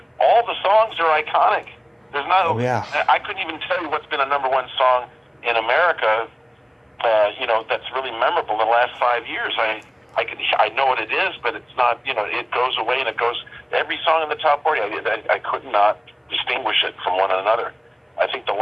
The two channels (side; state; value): both; identical; correlation 1.00